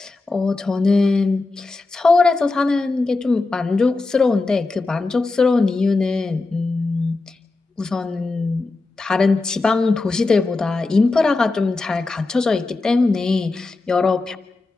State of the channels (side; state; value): right; quieter; 3.5 dB